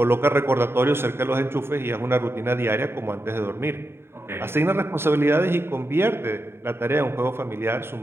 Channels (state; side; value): late; left; 0.11 ms